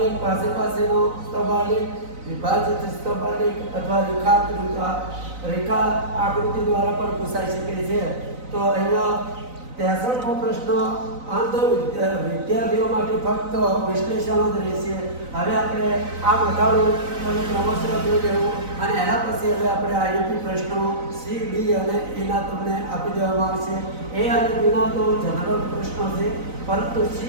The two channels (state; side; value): late; left; 4.0 ms